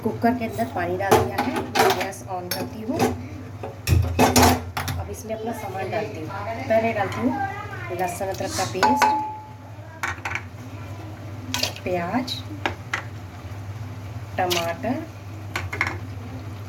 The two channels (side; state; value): both; identical; correlation 1.00